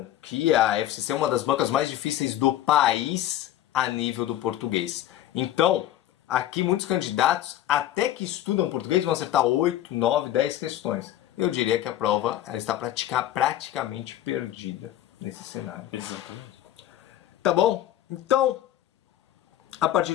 que a FCC é uma das bancas mais difíceis do país a nível do português. Então, aqui muitos candidatos, até que estudam português, vão acertar 8, 9, 10 questões. Eu diria que a prova ela está praticamente perdida nesse cenário. Exatamente. Tá bom? Então, a partir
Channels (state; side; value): quieter; right; 12.6 dB